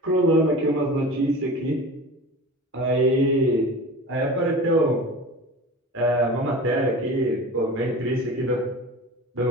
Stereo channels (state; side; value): normal; both; correlation 0.35